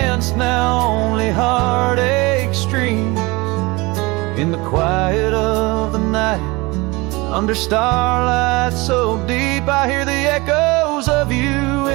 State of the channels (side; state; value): left; quieter; 24.0 dB